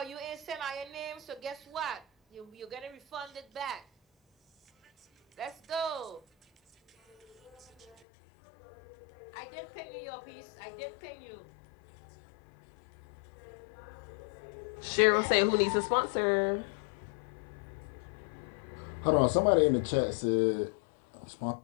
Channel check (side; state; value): right; drops out; at 8.0 s